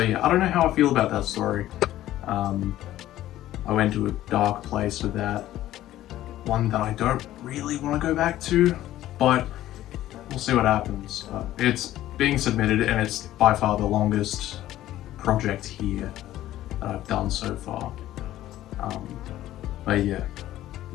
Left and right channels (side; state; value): right; quieter; 14.0 dB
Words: yeah, I don't know how I feel about that story. I went to a dark place with that. One that I don't really want to go back to, but we'll see what happens. It's being submitted, and it's by far the longest project here that I've done so far. But yeah,